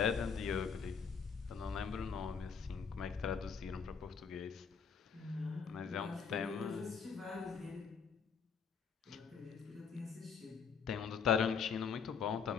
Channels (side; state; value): right; quieter; 6.2 dB